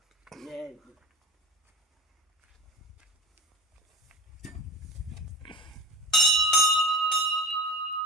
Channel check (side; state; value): both; normal; correlation 0.32